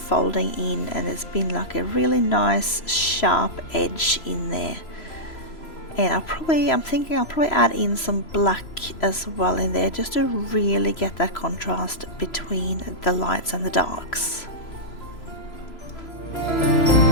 in, and there's been like a really nice sharp edge in there. And I'm thinking I'll probably add in some black as well in there, just to really get that contrast between the lights and the darks.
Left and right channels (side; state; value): right; late; 3.0 ms